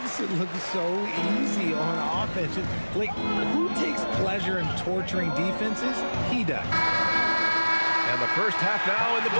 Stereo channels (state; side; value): inverted; both; correlation -1.00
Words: it look so easy on offense. Like, who takes pleasure in torturing defenses? He does. And the first half now in the